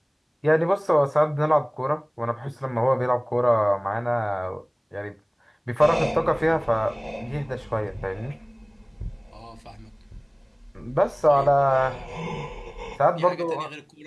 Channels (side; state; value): both; identical; correlation 1.00